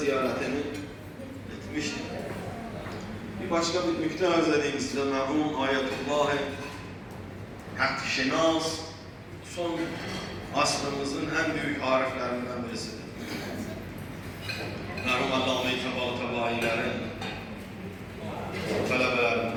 etmişti. Bir başka bir nükte arz edeyim size. Merhum Ayetullah Hakkşinas son asrımızın en büyük ariflerinden birisidir. Merhum Allame-i Tabailerin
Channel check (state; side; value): identical; both; correlation 1.00